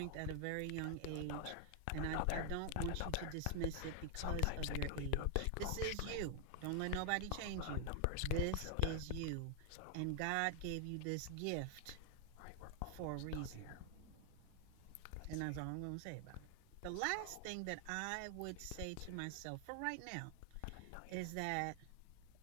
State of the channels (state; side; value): different; both; correlation 0.00